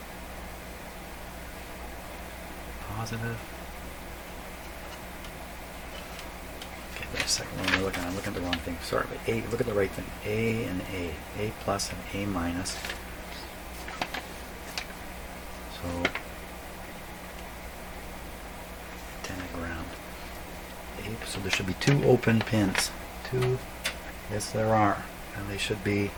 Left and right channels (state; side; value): identical; both; correlation 1.00